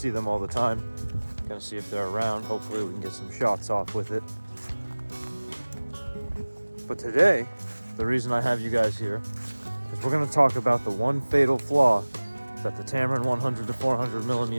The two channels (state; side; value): inverted; both; correlation -1.00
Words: them all the time. Gonna see if they're around. Hopefully we can get some shots off with it. But today, the reason I have you guys here is we're gonna talk about the one fatal flaw that the Tamron